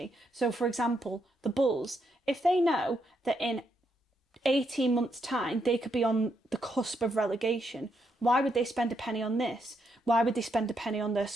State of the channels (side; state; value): both; normal; correlation 0.79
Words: So, for example, the Bulls, if they know that in 18 months' time they could be on the cusp of relegation, why would they spend a penny on this? Why would they spend a penny on their